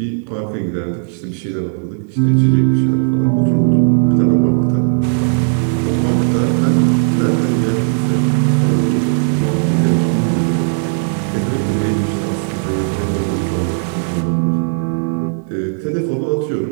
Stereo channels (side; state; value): left; silent; digital silence